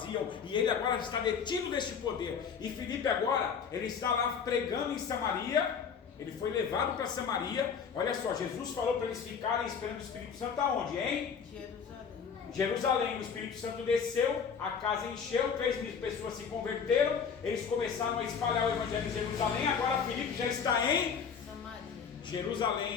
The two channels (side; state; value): right; quieter; 6.6 dB